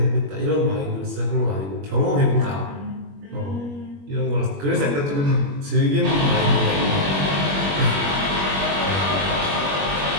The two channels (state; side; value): late; left; 21 ms